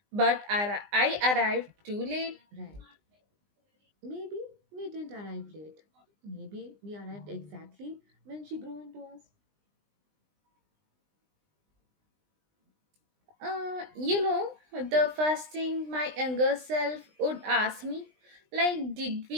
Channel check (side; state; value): left; late; 20 ms